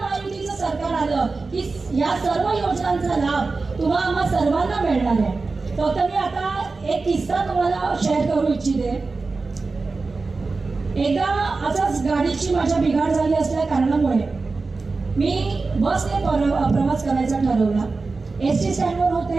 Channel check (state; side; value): quieter; left; 3.9 dB